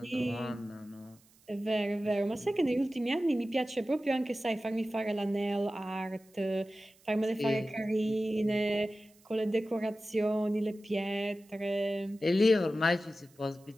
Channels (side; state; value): right; noise; hiss, 30 dB below the sound